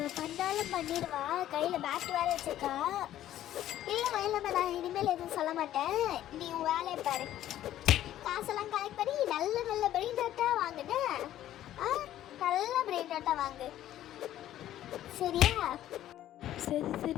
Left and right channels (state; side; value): quieter; right; 12.6 dB